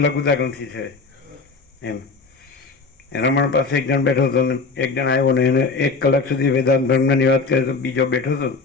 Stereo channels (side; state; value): right; quieter; 4.3 dB